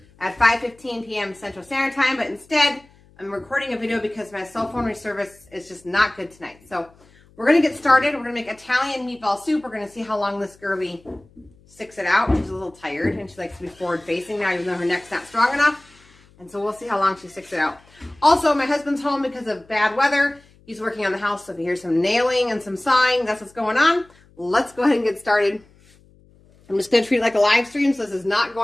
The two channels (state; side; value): noise; left; hum, 29 dB below the sound